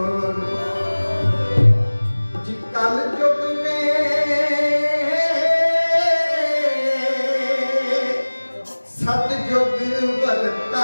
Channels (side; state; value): both; inverted; correlation -1.00